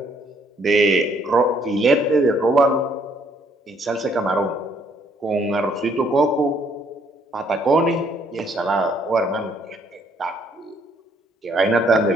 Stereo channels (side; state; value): both; normal; correlation 0.67